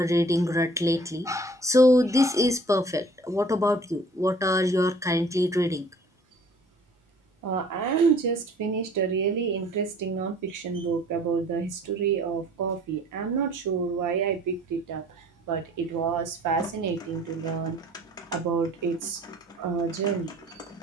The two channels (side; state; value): both; normal; correlation 0.52